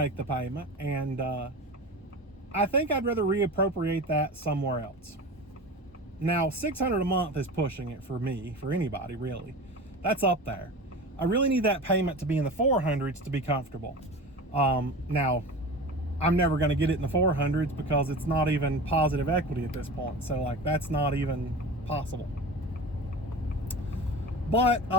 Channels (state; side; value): normal; both; correlation 0.32